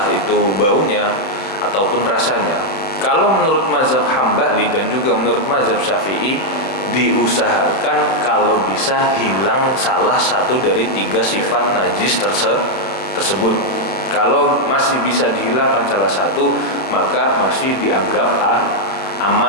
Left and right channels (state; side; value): late; right; 31 ms